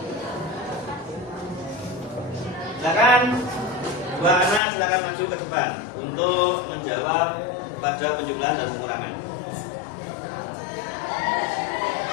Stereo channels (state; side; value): drops out; right; at 4.6 s